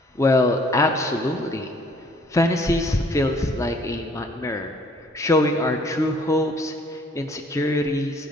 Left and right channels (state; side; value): normal; both; correlation 0.59